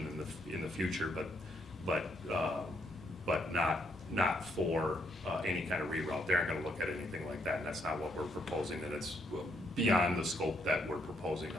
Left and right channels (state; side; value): normal; both; correlation 0.74